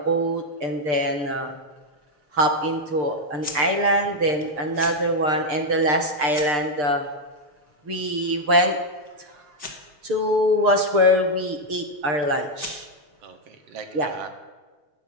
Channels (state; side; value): late; left; 6.7 ms